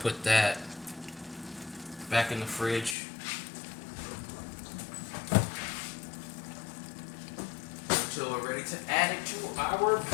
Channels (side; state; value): right; drops out; at 3.0 s